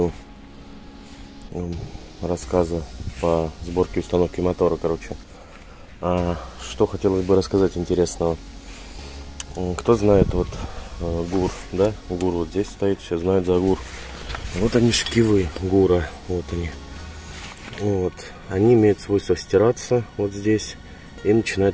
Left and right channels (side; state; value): both; identical; correlation 1.00